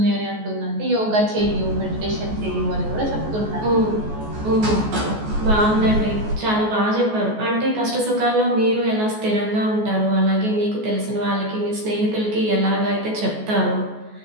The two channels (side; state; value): left; late; 14 ms